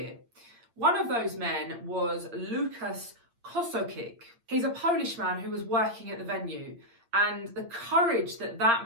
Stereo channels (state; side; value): late; left; 8.7 ms